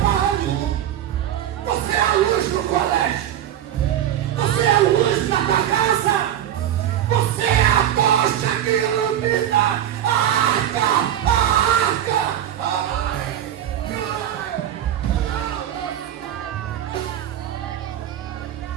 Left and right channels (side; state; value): left; quieter; 10.9 dB